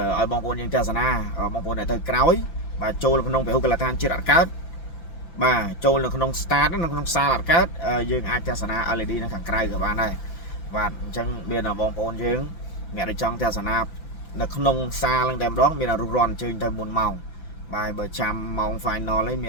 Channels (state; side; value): late; right; 5.9 ms